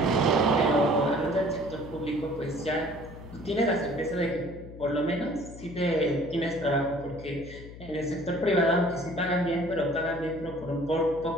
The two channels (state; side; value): noise; left; hum, 15 dB below the sound